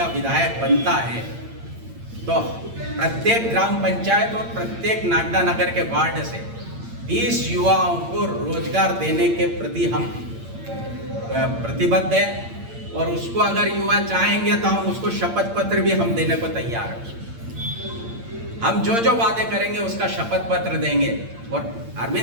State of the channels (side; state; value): left; late; 8.8 ms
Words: विधायक बनता है तो प्रत्येक ग्राम पंचायत और प्रत्येक नागदा नगर के वार्ड से 20 युवाओं को रोजगार देने के प्रति हम प्रतिबद्ध है, और उसको अगर युवा चाहेंगे तो हम उसको शपथ पत्र भी हम देने को तैयार हैं। हम जो जो वादे करेंगे उसका शपथ पत्र देंगे। और